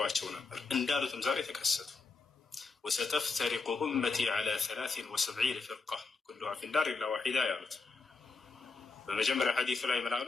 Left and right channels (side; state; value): right; quieter; 4.3 dB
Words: ነበር። እንዳሉትም ዛሬ ተከሰቱ። ወሰተፍተሪቁ ኡመቲ ዐላ 73 ፍርቃ ኩሉሃ ፊናር ኢላ ዋሒዳ ያሉት። በመጀመሪያ ሐዲሱ ላይ ምን አሉ?